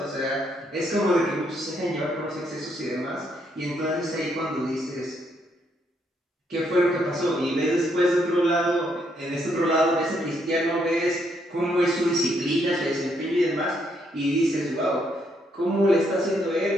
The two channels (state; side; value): normal; both; correlation 0.74